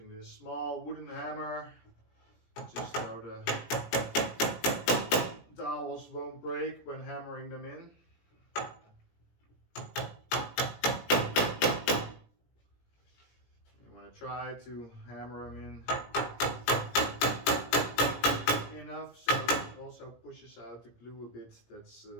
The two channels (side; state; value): right; late; 17 ms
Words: this small wooden hammer just so the dowels won't break when hammering them in. You want to try to hammer them in enough so it also pushes out the glue a bit that's